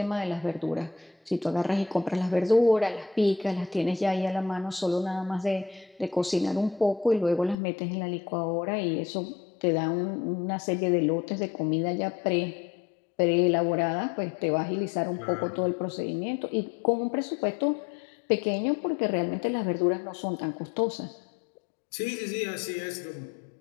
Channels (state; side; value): drops out; right; at 7.6 s